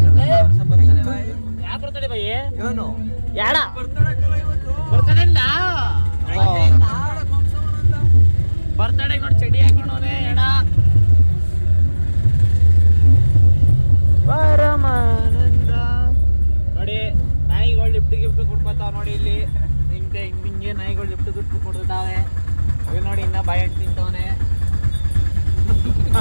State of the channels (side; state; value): both; inverted; correlation -1.00